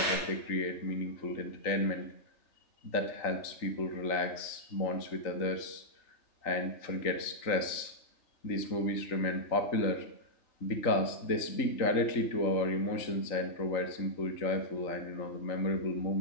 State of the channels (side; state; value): right; late; 3.8 ms